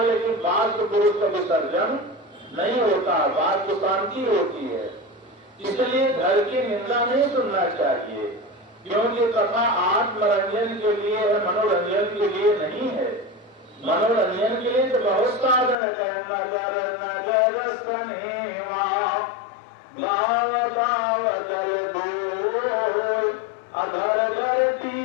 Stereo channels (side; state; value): right; drops out; at 15.8 s